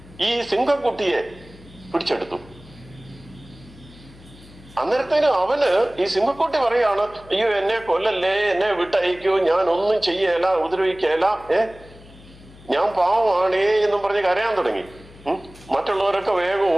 ഈ സിംഹക്കുട്ടിയെ പിടിച്ചെടുത്തു. അന്നേരത്തേനും അവന് ഈ സിംഹക്കുട്ടി പറയാണ്, അയ്യോ എന്നെ കൊല്ലല്ലേ, എന്നെ വിട്ടയക്കൂ, ഞാൻ ഒന്നും ചെയ്യല, ഉപദ്രവിക്കല, ഞാൻ പാവമാണേ എന്നും പറഞ്ഞ് കരയാൻ തുടങ്ങി. മറ്റുള്ളവരൊക്കെ വേഗം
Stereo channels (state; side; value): noise; left; hum, 22 dB below the sound